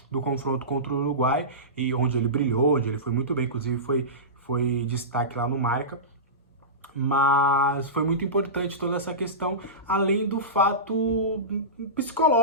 do confronto contra o Uruguai, e onde ele brilhou, onde ele foi muito bem, inclusive foi destaque lá no Marca. Mas foi muito importante toda essa questão, além do fato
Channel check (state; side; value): normal; both; correlation -0.20